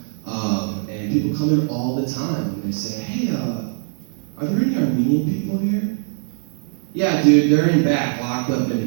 And people come in all the time and they say, hey, are there any Armenian people here? Yeah, dude, they're in back, locked up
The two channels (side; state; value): left; silent; digital silence